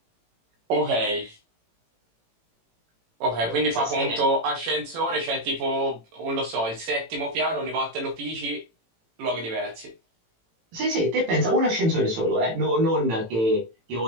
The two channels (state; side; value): late; left; 18 ms